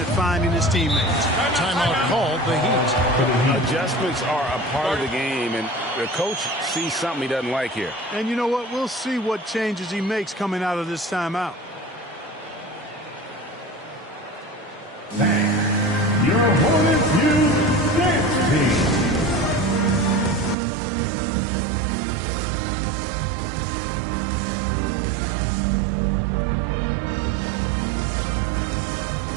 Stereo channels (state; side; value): drops out; left; at 20.6 s